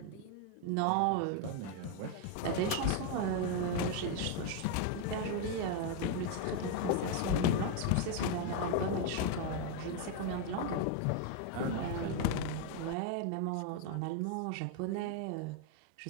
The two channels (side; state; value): both; different; correlation 0.01